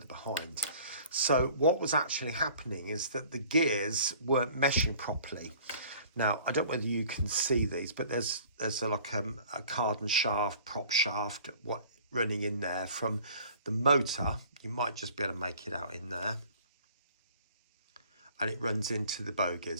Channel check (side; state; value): both; inverted; correlation -0.50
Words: behind. So what was actually happening is that the gears weren't meshing properly. Now, I don't know whether you can see these, but there's like a cardan shaft, prop shaft, running in there from the motor. You might just be able to make it out in there. And it runs into the